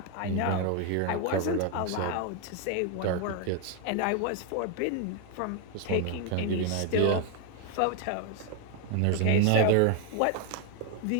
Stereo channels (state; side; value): different; both; correlation 0.00